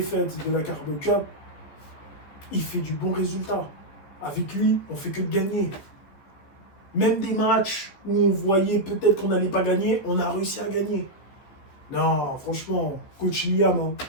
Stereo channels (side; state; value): right; late; 15 ms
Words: de la Carabao Cup, il fait du bon résultat. Avec lui, on fait que de gagner. Même des matchs où on voyait peut-être qu'on n'allait pas gagner, on a réussi à gagner. Non, franchement, coach Liam, hein,